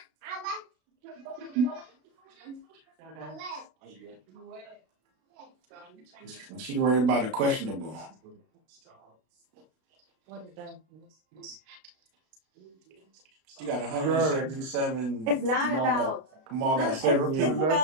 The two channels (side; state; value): left; late; 33 ms